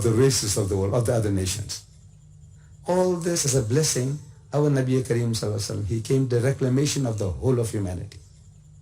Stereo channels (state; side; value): identical; both; correlation 1.00